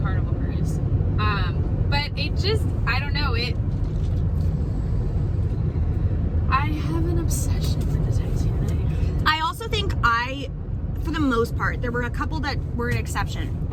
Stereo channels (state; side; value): identical; both; correlation 1.00